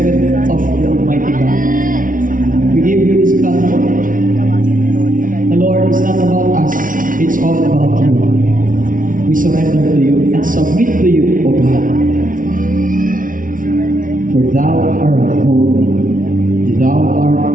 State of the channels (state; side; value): late; left; 0.39 ms